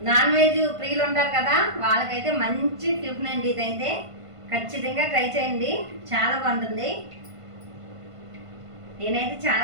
నాన్ వెజ్ ప్రియులు ఉంటారు కదా, వాళ్ళకైతే మంచి టిఫిన్ అండి. ఇదైతే ఖచ్చితంగా ట్రై చేయండి, చాలా బాగుంటుంది. నేనైతే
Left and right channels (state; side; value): late; left; 1.5 ms